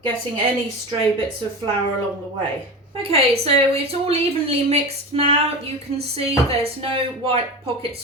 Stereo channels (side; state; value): both; normal; correlation 0.28